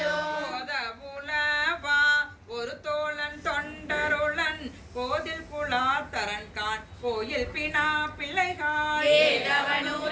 புலவா ஒரு தோழன் தொண்டருளன் கோதில் குலாத்தரன் கான் கோயில் பினா பிள்ளைகாள்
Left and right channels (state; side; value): identical; both; correlation 1.00